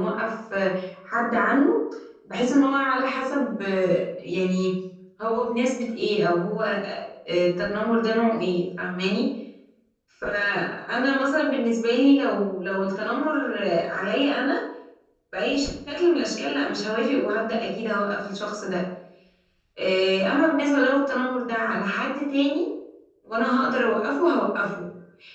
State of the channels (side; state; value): both; identical; correlation 1.00